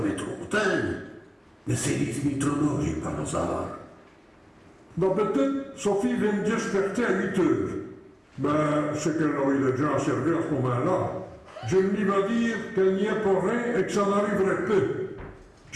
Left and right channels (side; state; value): both; identical; correlation 1.00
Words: trop tard, mais c'est les trop j'ai par hasard. D'habitude, Sophie vient me desperter à 8 heures. Ben, c'est qu'elle aurait déjà à servir à ce moment-là. Je me va dire qu'elle n'y est pour rien et que ça n'arriverait pas.